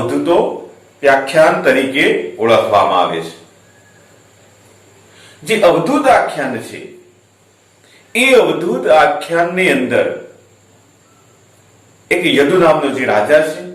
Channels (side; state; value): both; identical; correlation 1.00